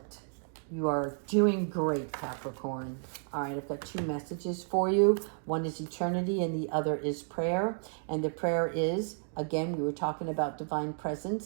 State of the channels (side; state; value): left; silent; 56 dB below the other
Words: You are doing great, Capricorn. All right, I've got two messages for you. One is eternity and the other is prayer. And the prayer is, again, we were talking about divine